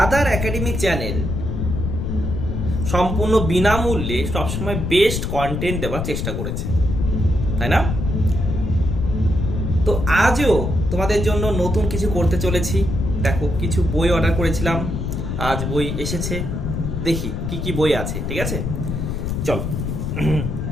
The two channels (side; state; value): left; noise; rumble, 2 dB below the sound